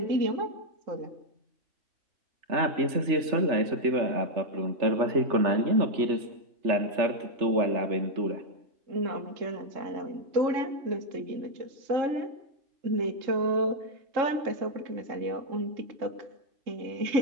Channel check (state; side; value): late; left; 3.4 ms